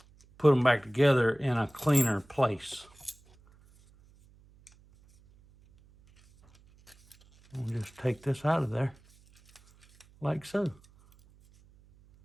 put them back together in a cleaner place. We'll just take this out of there, like so.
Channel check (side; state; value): right; noise; hum, 29 dB below the sound